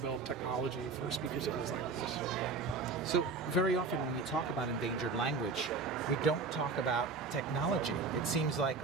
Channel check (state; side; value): quieter; left; 4.3 dB